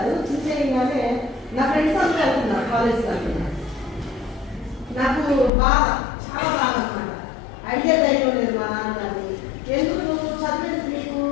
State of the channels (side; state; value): right; drops out; at 5.5 s